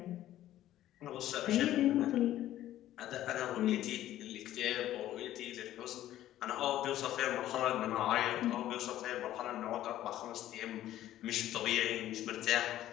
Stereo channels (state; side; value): quieter; right; 13.3 dB